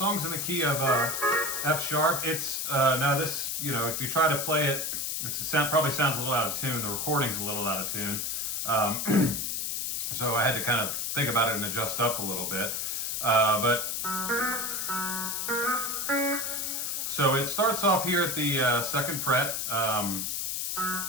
in the key of F sharp. It's, now this, if you try to play it, probably sounds a little out of tune. The recording's a little out of tune. So I had to kind of think about it and adjust up a little bit. So it starts off here at the 2nd fret,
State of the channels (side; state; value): left; noise; hiss, 1 dB below the sound